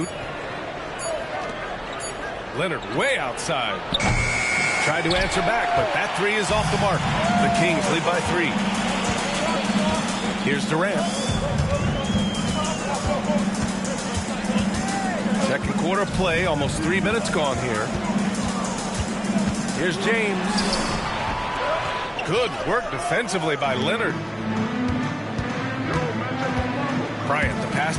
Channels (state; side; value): identical; both; correlation 1.00